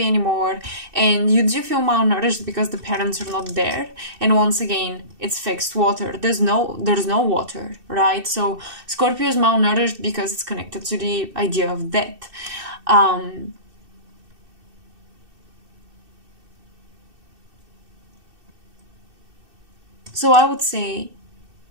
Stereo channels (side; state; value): left; late; 2.6 ms